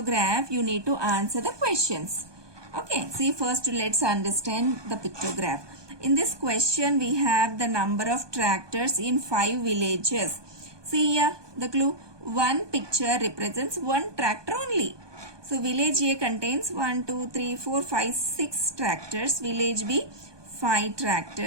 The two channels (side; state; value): left; late; 1.2 ms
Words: you need to answer the questions. Okay, see, first let's understand the pictograph. In this question we have the number of tractors in 5 villages. See here the clue, one picture represents one tractor only. So village A contains 1, 2, 3, 4, 5, 6 tractors. Village B 5